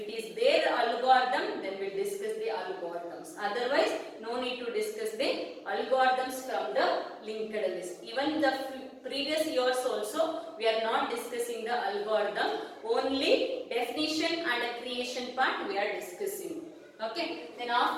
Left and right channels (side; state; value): both; identical; correlation 1.00